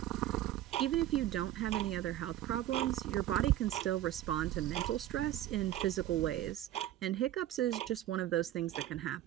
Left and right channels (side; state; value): left; quieter; 13.3 dB